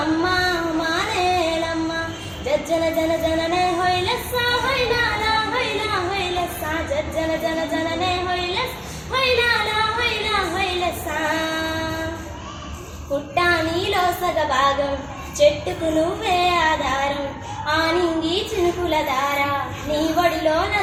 అమ్మ మానేలమ్మ జజ్జన జన జననే హొయ్లెస్స హొయ్లాల హొయ్లా హొయ్లెస్స జజ్జన జన జననే హొయ్లెస్ హొయ్లాల హొయ్లా హొయ్లెస్స పుట్టా నీలో సగభాగం చెట్టుకు నువ్వే ఆధారం ఆనింగి చినుకుల దార నీ ఒడిలో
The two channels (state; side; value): identical; both; correlation 1.00